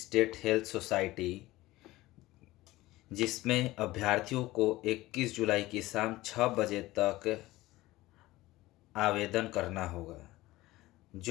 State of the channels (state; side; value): quieter; right; 18.1 dB